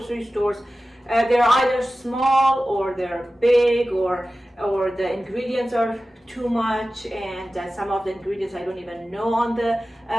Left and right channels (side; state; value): both; normal; correlation 0.95